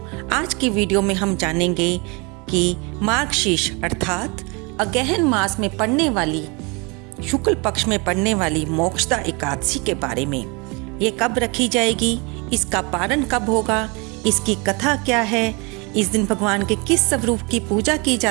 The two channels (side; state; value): left; quieter; 29.3 dB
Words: आज की वीडियो में हम जानेंगे कि मार्गशीर्ष अर्थात अगहन मास में पड़ने वाली शुक्ल पक्ष में पड़ने वाली मोक्षदा एकादशी के बारे में। ये कब रखी जाएगी, इसका पारण कब होगा, इसकी कथा क्या है, इस दिन भगवान के किस स्वरूप की पूजा की